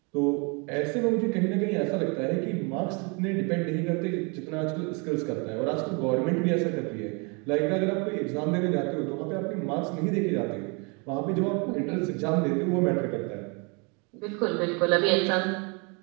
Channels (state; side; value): quieter; left; 32.5 dB